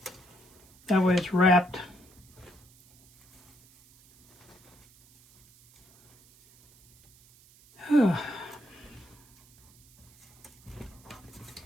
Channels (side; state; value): right; noise; hiss, 27 dB below the sound